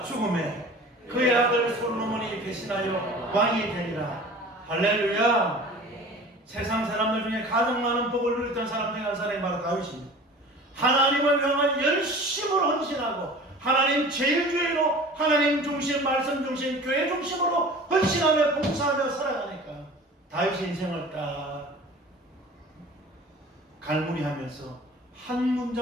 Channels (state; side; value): normal; both; correlation 0.42